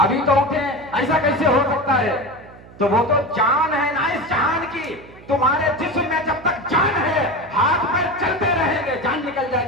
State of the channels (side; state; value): right; noise; hum, 21 dB below the sound